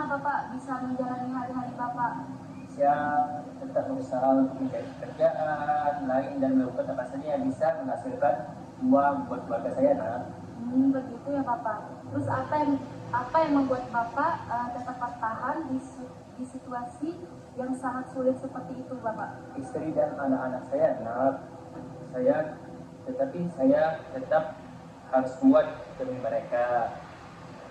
Bapak bisa menjalani hari-hari Bapak? Saya tetap berusaha untuk mencari pekerjaan lain dan melakukan apa saja yang bisa menghasilkan uang buat keluarga saya nak. Begitu ya Bapak. Terus apa yang membuat Bapak tetap bertahan di situasi yang sangat sulit seperti itu Bapak? Istri dan anak-anak saya nak. Tetapi saya tetap harus kuat demi mereka.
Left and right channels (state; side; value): identical; both; correlation 1.00